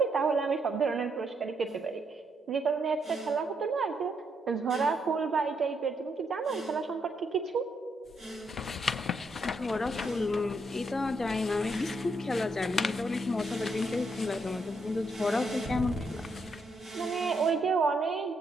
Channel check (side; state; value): both; normal; correlation 0.77